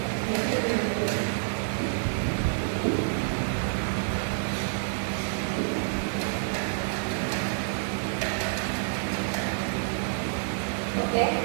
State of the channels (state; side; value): silent; left; digital silence